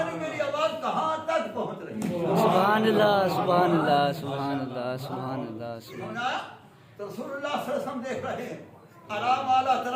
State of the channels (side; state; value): both; identical; correlation 1.00